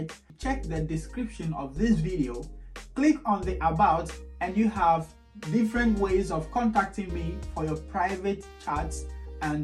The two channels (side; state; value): both; identical; correlation 1.00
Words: check the description of this video, click on the about, and you have different ways of contacting me for your private chats